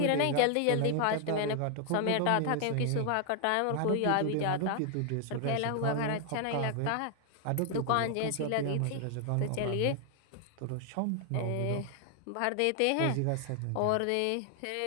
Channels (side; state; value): both; different; correlation 0.00